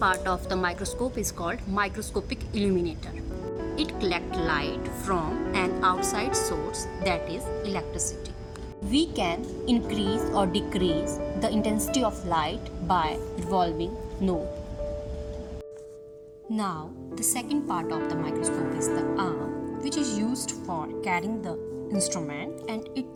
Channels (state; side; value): identical; both; correlation 1.00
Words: of the microscope is called microscopic illuminator. It collects light from an outside source, that is electricity. We can increase or decrease the intensity of light by revolving knob. Now, the second part of the microscope is the arm, which is used for carrying the instrument, and